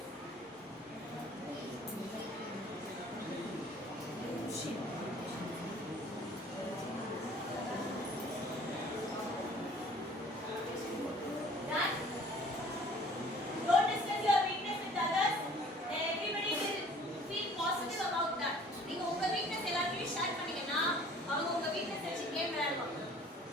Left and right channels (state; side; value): normal; both; correlation 0.52